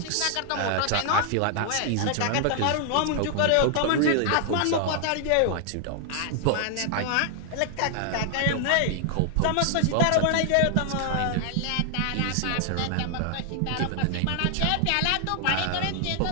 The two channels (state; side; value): different; both; correlation 0.00